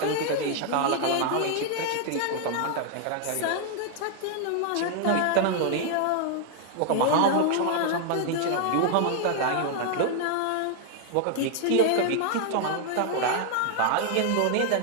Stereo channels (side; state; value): both; different; correlation 0.00